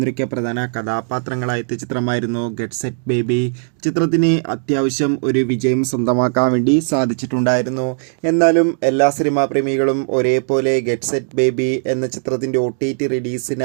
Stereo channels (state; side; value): silent; left; digital silence